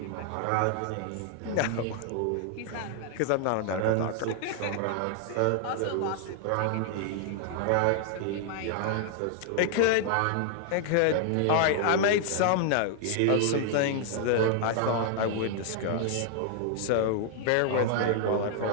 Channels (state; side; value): different; both; correlation 0.00